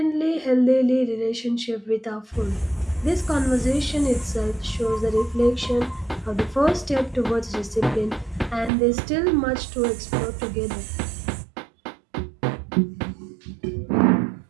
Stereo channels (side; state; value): left; drops out; at 8.7 s